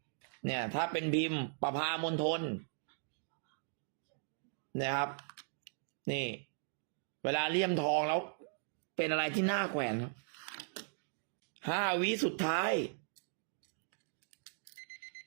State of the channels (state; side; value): silent; left; digital silence